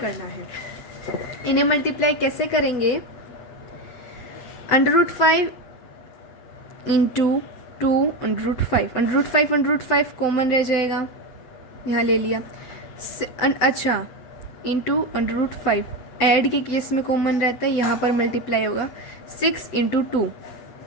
है। इन्हें मल्टीप्लाई कैसे करेंगे, √5 इंटू 2 √5, √5 कॉमन रह जाएगा, यहाँ ले लिया। अच्छा, इंटू √5 ऐड के केस में कॉमन रहता है, यहाँ पर मल्टीप्लाई होगा, 6 × 2,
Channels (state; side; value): late; right; 8.3 ms